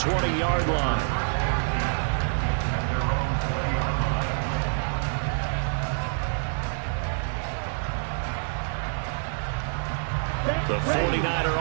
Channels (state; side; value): silent; left; digital silence